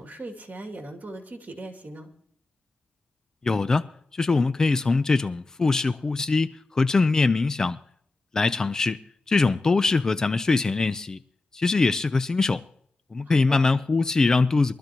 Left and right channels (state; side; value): quieter; right; 3.3 dB